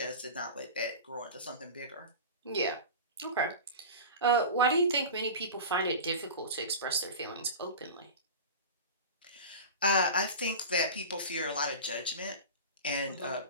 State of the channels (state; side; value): inverted; both; correlation -0.31